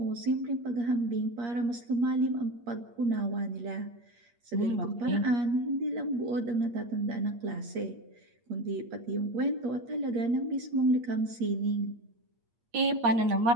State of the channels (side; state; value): left; late; 8.5 ms